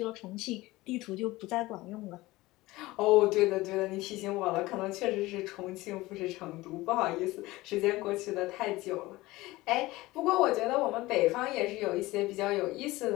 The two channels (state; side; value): quieter; right; 19.3 dB